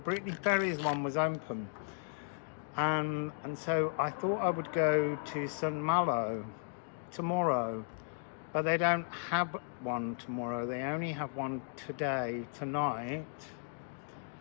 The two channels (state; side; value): silent; right; digital silence